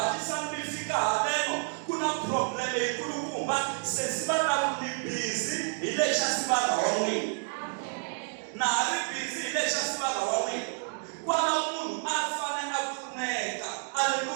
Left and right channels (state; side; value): silent; left; 58 dB below the other